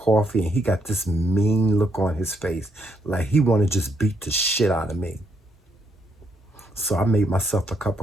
and he got this mean look on his face, like he wanted to just beat the shit out of me. So I made myself a cup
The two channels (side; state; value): both; normal; correlation 0.75